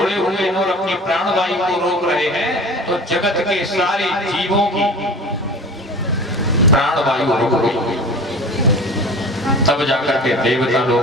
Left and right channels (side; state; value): both; normal; correlation 0.37